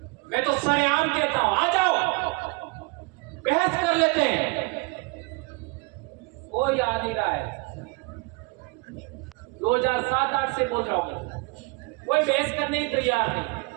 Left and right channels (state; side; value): quieter; left; 27.8 dB